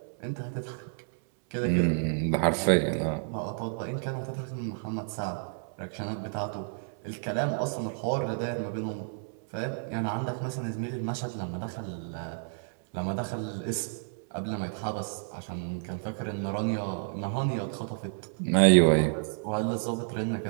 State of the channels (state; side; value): silent; left; 58 dB below the other